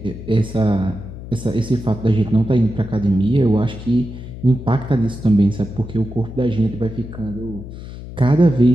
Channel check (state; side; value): noise; left; hum, 12 dB below the sound